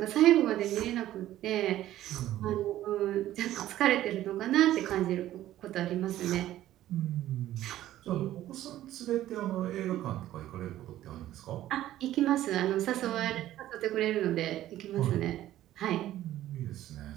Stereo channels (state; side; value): quieter; left; 13.6 dB